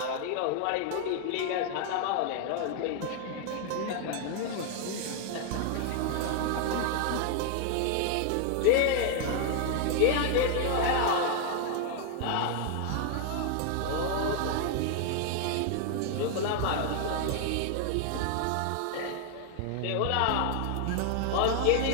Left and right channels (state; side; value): different; both; correlation 0.00